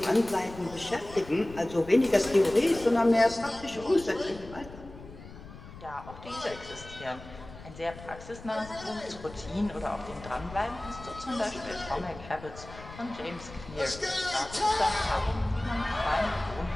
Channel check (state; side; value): noise; left; rumble, 16 dB below the sound